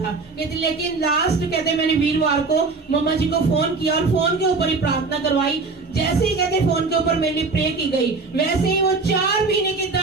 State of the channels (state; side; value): quieter; left; 4.1 dB